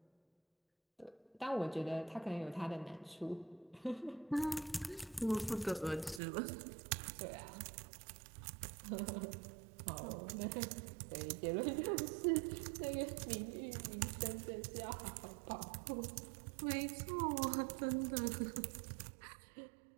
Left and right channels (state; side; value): drops out; left; at 6.2 s